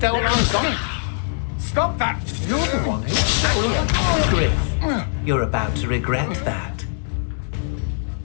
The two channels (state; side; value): silent; right; digital silence